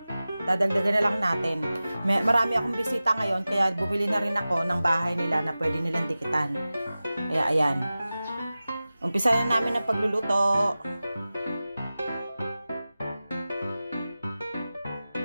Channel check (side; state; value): both; inverted; correlation -0.96